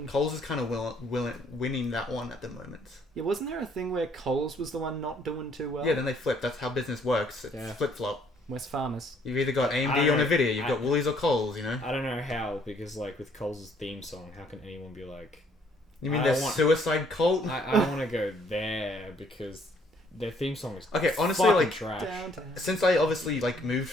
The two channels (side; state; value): both; normal; correlation 0.64